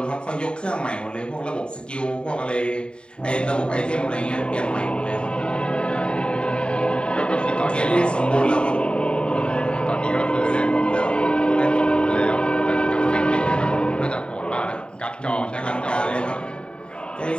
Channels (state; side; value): late; right; 0.051 ms